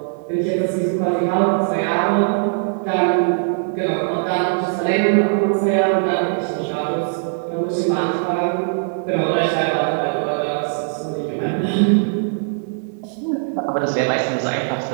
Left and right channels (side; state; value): left; silent; digital silence